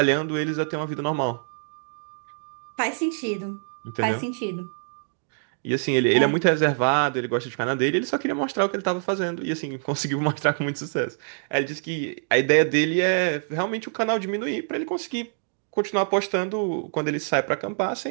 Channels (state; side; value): silent; left; digital silence